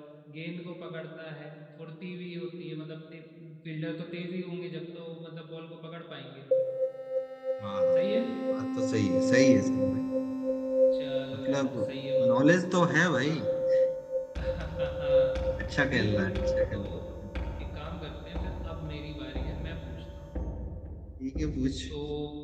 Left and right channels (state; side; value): identical; both; correlation 1.00